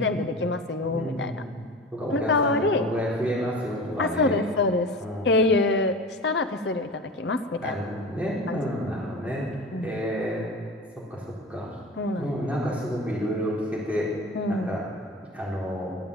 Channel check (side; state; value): both; normal; correlation 0.33